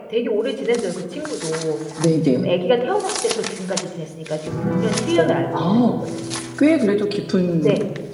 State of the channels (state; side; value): identical; both; correlation 1.00